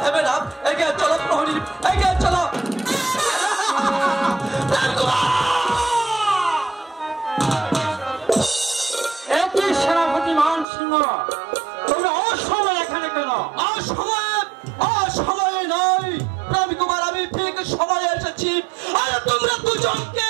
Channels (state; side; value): drops out; left; at 10.7 s